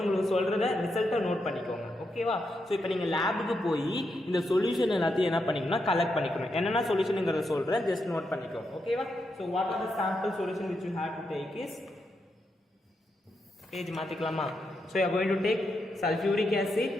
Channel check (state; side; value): normal; both; correlation 0.83